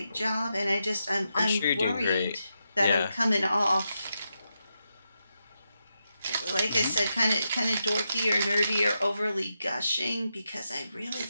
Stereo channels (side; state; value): both; inverted; correlation -0.86